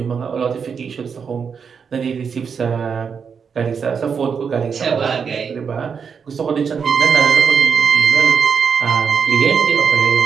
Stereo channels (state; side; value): quieter; left; 6.3 dB